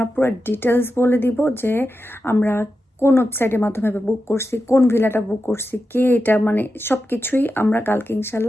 পুরো ডিটেলস বলে দিব যে আমরা কোন ওয়েবসাইটের মাধ্যমে বুক করছি, কোন ভিলাটা বুক করছি, কে এটা, মানে সব কিছুই আমরা কালকে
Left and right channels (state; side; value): normal; both; correlation 0.90